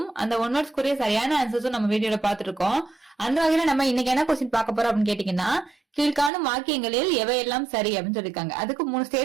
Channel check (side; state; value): left; drops out; at 6.3 s